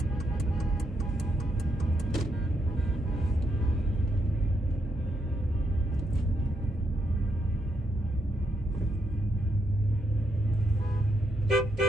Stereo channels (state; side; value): normal; both; correlation 0.78